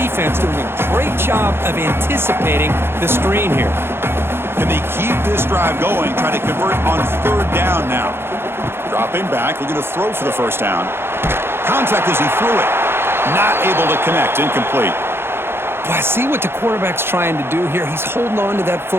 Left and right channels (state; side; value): late; left; 0.11 ms